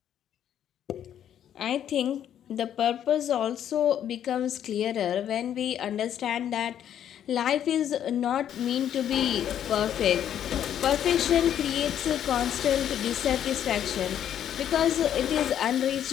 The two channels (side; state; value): right; quieter; 10.1 dB